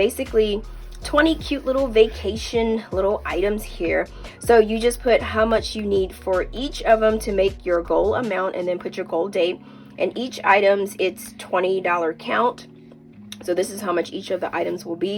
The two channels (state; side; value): identical; both; correlation 1.00